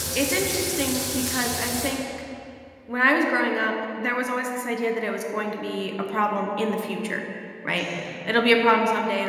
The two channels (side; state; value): both; identical; correlation 1.00